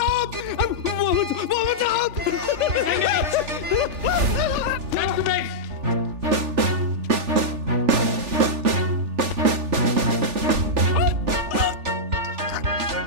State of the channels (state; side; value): late; left; 3.4 ms